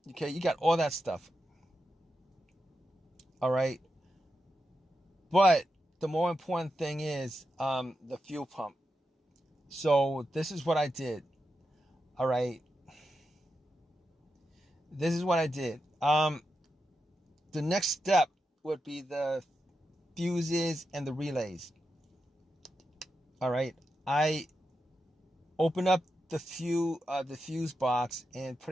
Okay, you got all that stuff. All right, but the more important thing is the fuel pump. So this is what I did. All right, this is what I did. The next step would be the fuses and the relays. All right, I opened up the fuse box and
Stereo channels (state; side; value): normal; both; correlation 0.87